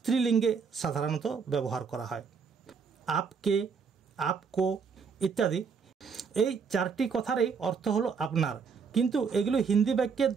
সাধারণত ব্যবহার করা হয়। আপকে, আপকো ইত্যাদি এই চারটি কথারই অর্থ হলো আপনার, কিন্তু এগুলো হিন্দি বাক্যের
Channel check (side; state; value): left; quieter; 5.8 dB